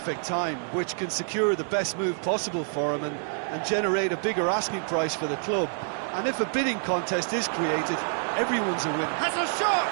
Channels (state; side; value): silent; left; 60 dB below the other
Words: time, which can secure the best move possible for him and generate a bigger asking price for the club. And if a bidding contest is created, everyone's a winner. Has a